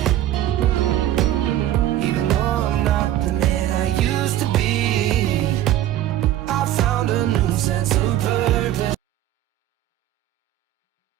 Even though I'm not the man I used to be, I found a new sense of purpose.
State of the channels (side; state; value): left; quieter; 12.8 dB